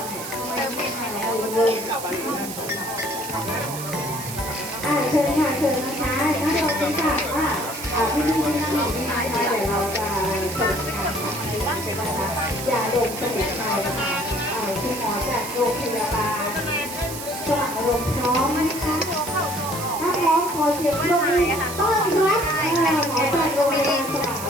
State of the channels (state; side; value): noise; right; hiss, 9 dB below the sound